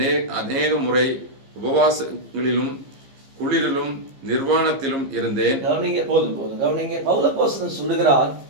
அநேக முறை உபவாசங்களிலும் குளிரிலும் நிர்வாணத்திலும் இருந்தேன். கவனிங்க. பவுல் அப்போஸ்தலன் சொல்லுகிறார்,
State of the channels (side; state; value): left; late; 15 ms